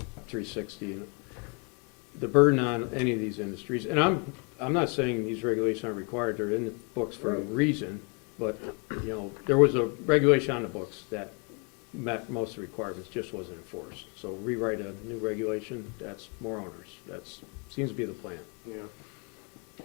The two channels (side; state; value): right; quieter; 34.4 dB